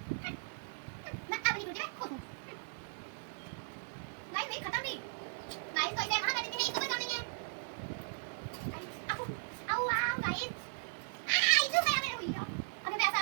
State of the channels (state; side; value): silent; left; digital silence